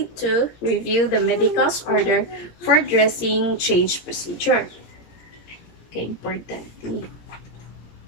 to review the medical's order for dressing change procedure. Okay, important.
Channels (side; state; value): right; late; 17 ms